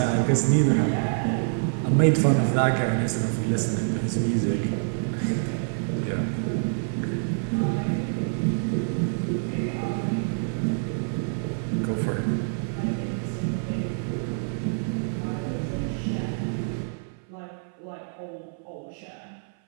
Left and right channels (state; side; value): silent; left; 59 dB below the other